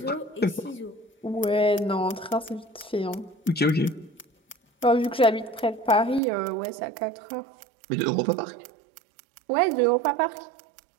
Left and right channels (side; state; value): left; drops out; at 6.2 s